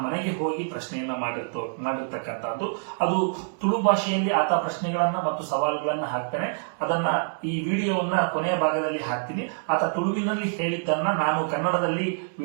ಮನೆಗೆ ಹೋಗಿ ಪ್ರಶ್ನೆಯನ್ನ ಮಾಡಿರ್ತಕ್ಕಂಥದ್ದು. ಅದು ತುಳು ಭಾಷೆಯಲ್ಲಿ ಆತ ಪ್ರಶ್ನೆಗಳನ್ನ ಮತ್ತು ಸವಾಲುಗಳನ್ನ ಹಾಕ್ತಾನೆ. ಅದನ್ನ ಈ ವಿಡಿಯೋವನ್ನ ಕೊನೆಯ ಭಾಗದಲ್ಲಿ ಹಾಕ್ತೀನಿ. ಆತ ತುಳುವಿನಲ್ಲಿ ಹೇಳಿದ್ದನ್ನ ನಾನು ಕನ್ನಡದಲ್ಲಿ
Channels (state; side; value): silent; left; digital silence